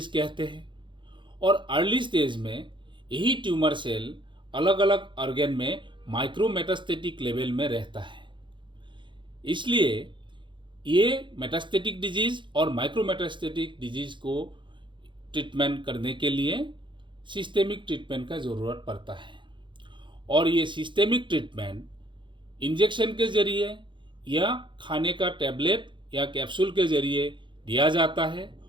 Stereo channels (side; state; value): left; late; 0.23 ms